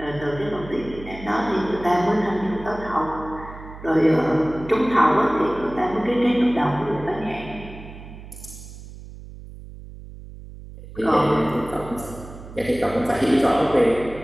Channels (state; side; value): noise; right; hum, 15 dB below the sound